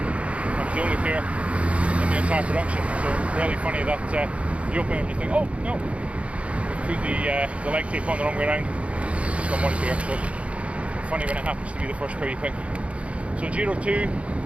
was the only pair in the entire production. So really funny that you open it and you think, oh no, we put the leg tape on the wrong way around. Just got one pair. So funny when it happens to be the first pair you pick. So Giro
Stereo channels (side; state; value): left; late; 0.062 ms